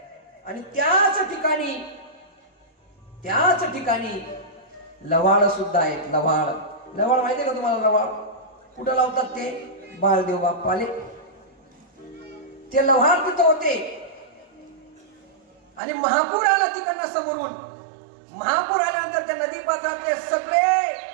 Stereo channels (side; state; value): left; drops out; at 15.8 s